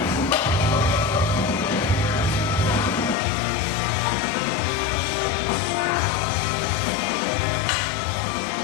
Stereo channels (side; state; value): right; drops out; at 3.2 s